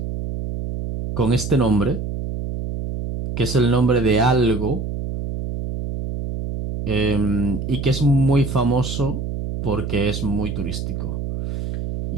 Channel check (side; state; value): right; noise; hum, 5 dB below the sound